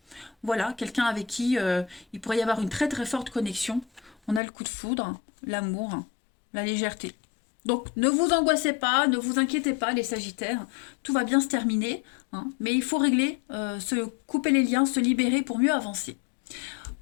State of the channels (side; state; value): right; drops out; at 4.4 s